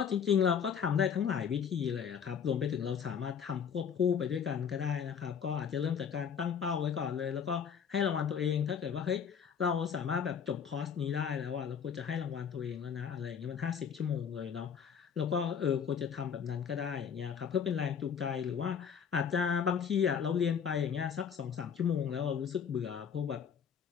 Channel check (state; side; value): quieter; right; 7.3 dB